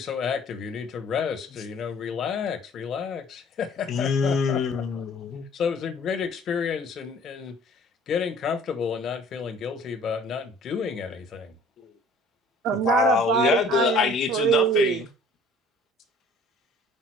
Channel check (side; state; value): both; normal; correlation 0.52